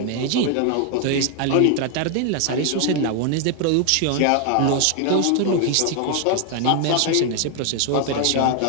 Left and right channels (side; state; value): both; different; correlation 0.00